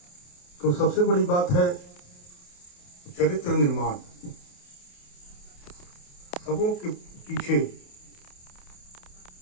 तो सबसे बड़ी बात है चरित्र निर्माण। सबों के पीछे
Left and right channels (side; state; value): right; late; 28 ms